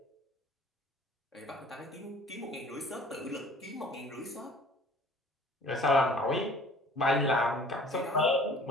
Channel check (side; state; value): both; normal; correlation 0.49